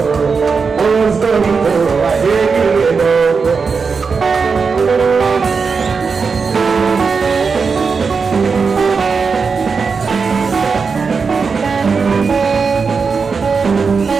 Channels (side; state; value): left; quieter; 5.1 dB